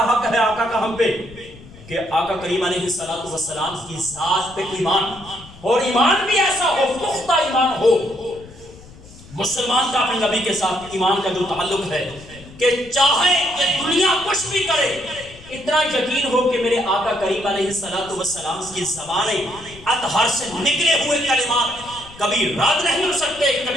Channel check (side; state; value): left; noise; rumble, 20 dB below the sound